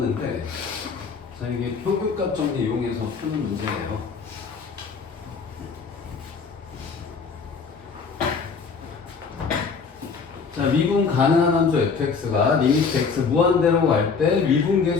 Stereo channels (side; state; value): right; quieter; 5.3 dB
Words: 자, 이게 평균값 정리 이용해서 푸는 문제예요. 자, 미분 가능한 함수 fx가 리미트 x 무한대로 갈 때